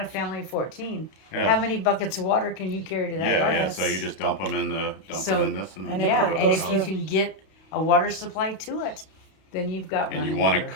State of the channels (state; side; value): late; right; 32 ms